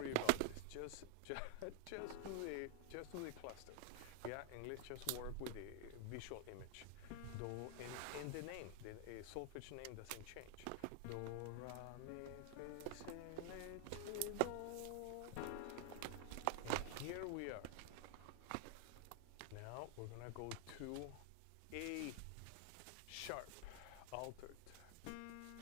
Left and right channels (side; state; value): both; different; correlation 0.00